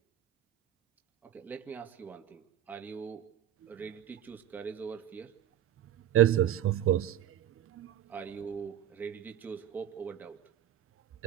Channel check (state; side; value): quieter; left; 10.9 dB